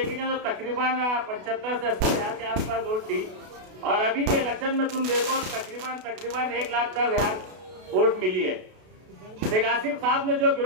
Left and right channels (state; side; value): late; left; 32 ms